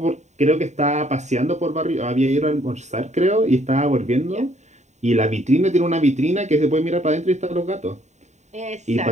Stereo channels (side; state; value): left; late; 0.34 ms